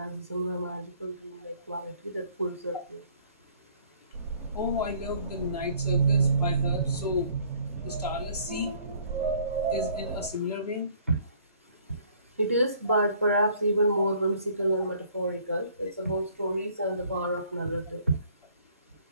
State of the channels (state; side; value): inverted; both; correlation -0.59